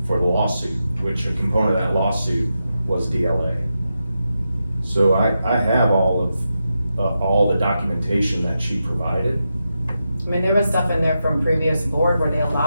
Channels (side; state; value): both; inverted; correlation -0.88